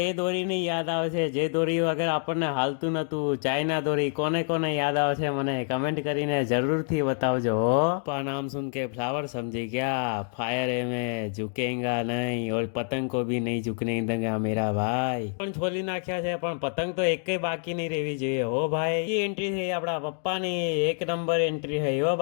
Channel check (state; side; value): silent; right; 60 dB below the other